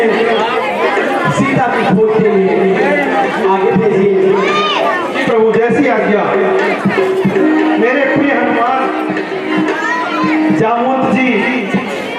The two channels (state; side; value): identical; both; correlation 1.00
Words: सीता की खोज के लिए आगे भेजिए। प्रभु जैसी आज्ञा। मेरे प्रिय हनुमान, जामवंत जी,